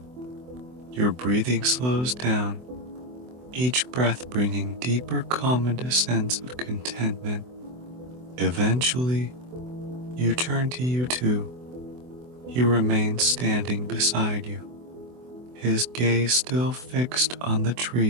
Your breathing slows down, each breath bringing deeper calm and a sense of contentment. Eventually, you turn to U2. He remains standing beside you, his gaze still fixed on the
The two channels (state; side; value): late; left; 24 ms